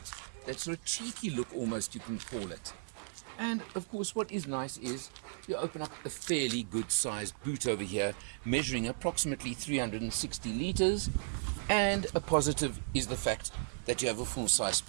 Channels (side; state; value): left; silent; 54 dB below the other